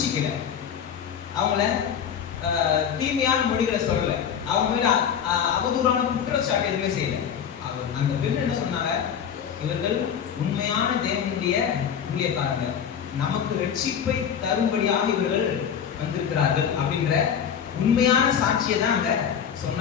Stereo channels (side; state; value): right; quieter; 8.1 dB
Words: அவங்கள தீமையான மொழிகளை சொல்லல. அவங்க மேல அவதூறான குற்றச்சாட்டு எதுவுமே செய்யல. அந்த பெண் என்ன சொன்னாங்க, இவர்கள் உண்மையான தேவனுடைய ஊழியக்காரங்க, நமக்கு ரட்சிப்பை தரும்படியாக இவர்கள் வந்திருக்கிறார்கள் அப்படின்ற உண்மையான சாட்சியை தான் அங்க